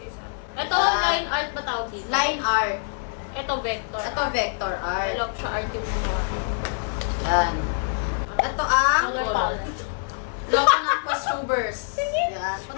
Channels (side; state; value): right; silent; digital silence